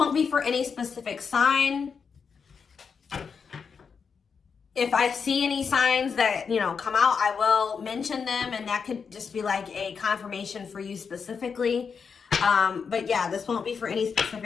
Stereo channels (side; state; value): right; quieter; 5.9 dB